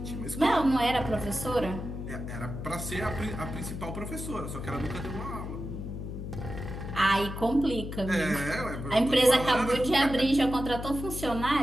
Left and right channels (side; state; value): left; noise; hum, 7 dB below the sound